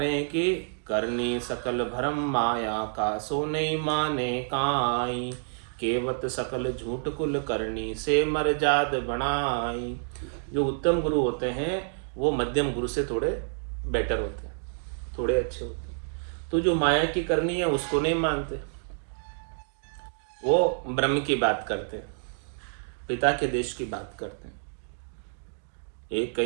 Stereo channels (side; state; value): left; silent; digital silence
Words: हैं कि करनी सकल भरम माया का, सो नहीं माने काई, केवत सकल झूठ कुल करनी, से मर जाद बनाई। जो उत्तम गुरु होते हैं वो मध्यम गुरु से थोड़े बेटर होते हैं, थोड़े अच्छे होते हैं। तो जो माया की करनी है उसको नहीं मानते, वो ब्रह्म की बात करते हैं, पिता के देश की बात करते हैं। एक